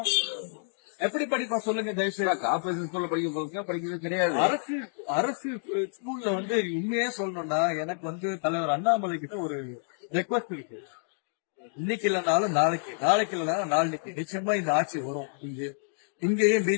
எப்படி படிப்பான் சொல்லுங்க தயவுசெய்து. கார்பரேஷன் ஸ்கூல்ல படிக்கிறது கிடையாது. அரசு ஸ்கூல்ல வந்து உண்மையே சொல்லணும்னா எனக்கு வந்து தலைவர் அண்ணாமலை கிட்ட ஒரு ரெக்வஸ்ட் இருக்கு. இன்னைக்கு இல்லைனாலும் நாளைக்கு, நாளைக்கு இல்லைனாலும் நாளைக்கு நிச்சயமா இந்த ஆட்சி வரும். இங்கேயும்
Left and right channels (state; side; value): silent; right; digital silence